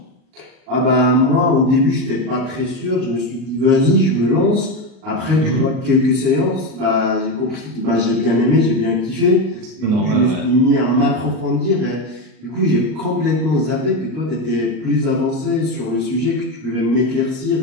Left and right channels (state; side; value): late; left; 38 ms